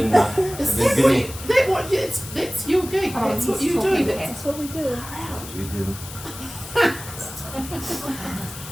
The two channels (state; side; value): noise; left; hiss, 13 dB below the sound